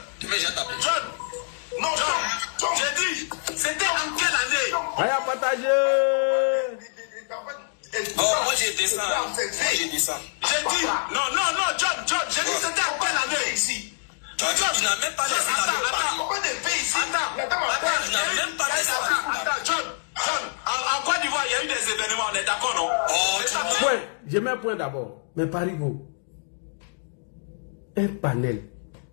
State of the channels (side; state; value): right; silent; digital silence